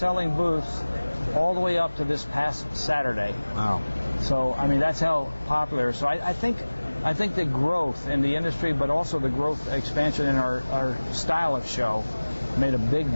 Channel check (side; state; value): both; inverted; correlation -1.00